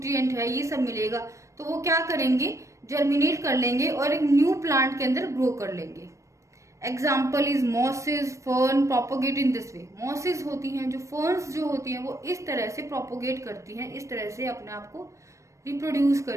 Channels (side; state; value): left; late; 0.15 ms